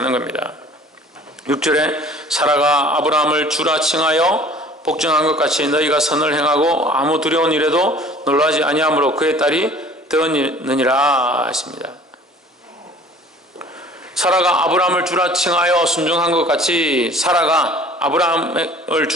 겁니다. 6절에 사라가 아브라함을 주라 칭하여 복종한 것 같이 너희가 선을 행하고 아무 두려운 일에도 놀라지 아니하므로 그의 딸이 되었느니라 했습니다. 사라가 아브라함을 주라 칭하여 순종한 것 같이 사라가 아브라함을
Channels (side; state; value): both; normal; correlation 0.49